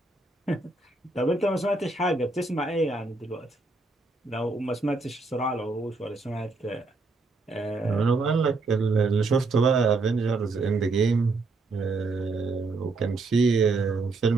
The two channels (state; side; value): quieter; left; 3.6 dB